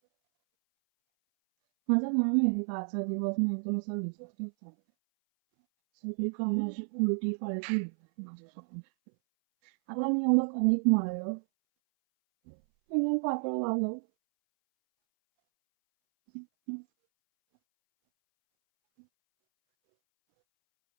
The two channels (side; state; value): left; silent; 58 dB below the other